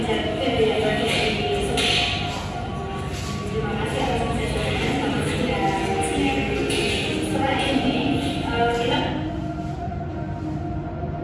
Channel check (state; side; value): identical; both; correlation 1.00